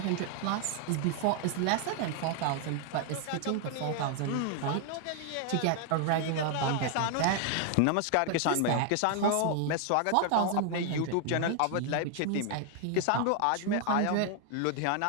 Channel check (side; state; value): both; different; correlation 0.00